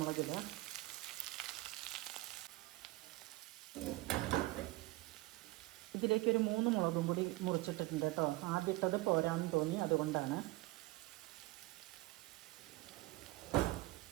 ഇടുക. ഇതിലേക്ക് ഒരു 3 മുളകും കൂടി മുറിച്ചിട്ടിട്ടുണ്ട് കേട്ടോ. ആദ്യത്തത് പോരാന്ന് തോന്നി, അതുകൊണ്ടാണ്.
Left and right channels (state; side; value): quieter; left; 20.2 dB